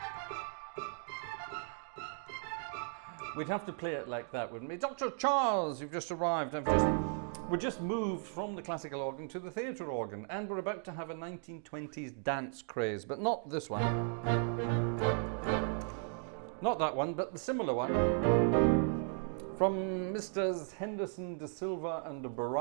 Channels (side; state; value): left; silent; 54 dB below the other